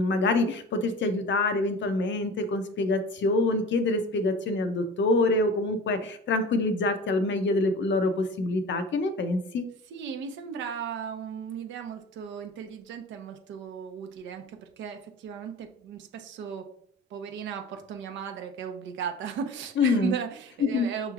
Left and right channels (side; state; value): both; normal; correlation 0.38